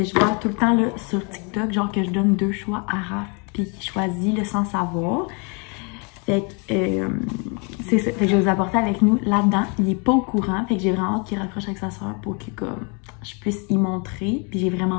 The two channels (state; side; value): quieter; right; 34.2 dB